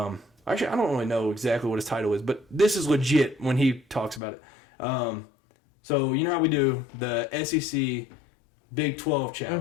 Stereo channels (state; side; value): drops out; right; at 4.2 s